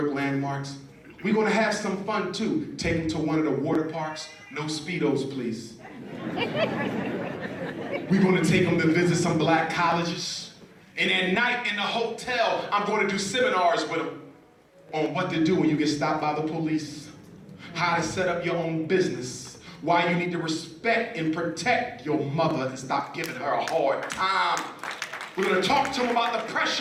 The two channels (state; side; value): identical; both; correlation 1.00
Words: landmarks. We're going to have some fun too. Take them to one of the water parks. No Speedos, please. We're going to take them to visit some black colleges. And at night in the hotel, I'm going to do seminars with them on what to do when you get stopped by the police, how to set up your own business, why you need to respect and protect your mother and stop giving her a hard time. We're going to talk to them about